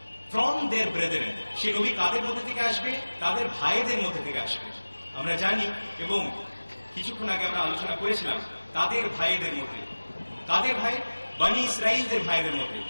ফ্রম দেয়ার ব্রেদারেন, সে নবী কাদের মধ্যে থেকে আসবে? তাদের ভাইদের মধ্যে থেকে আসবে। আমরা জানি এবং কিছুক্ষণ আগে আমরা আলোচনা করেছিলাম তাদের ভাইদের মধ্যে। কাদের ভাই? বনি ইসরাইলদের ভাইদের মধ্যে।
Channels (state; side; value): inverted; both; correlation -1.00